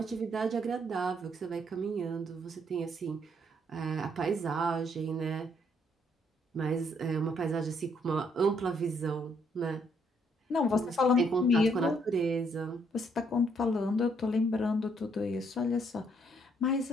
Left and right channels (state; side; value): normal; both; correlation 0.70